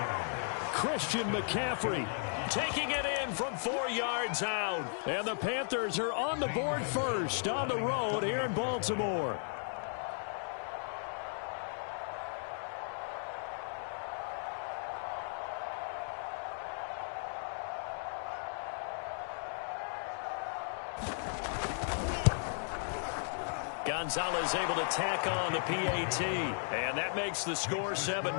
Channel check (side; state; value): right; silent; digital silence